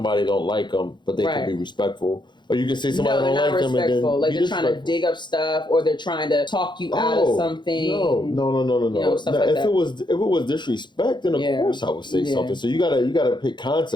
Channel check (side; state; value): right; late; 0.22 ms